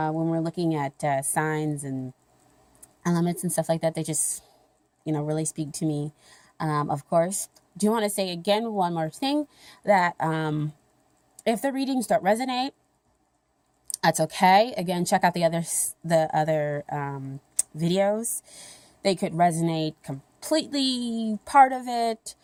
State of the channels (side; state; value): both; identical; correlation 1.00